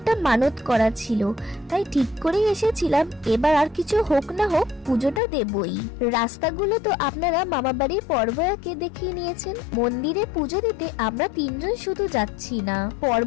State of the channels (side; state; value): right; drops out; at 5.2 s